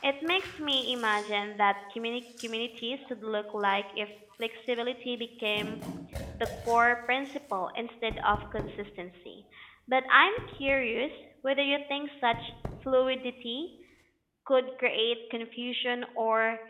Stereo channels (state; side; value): identical; both; correlation 1.00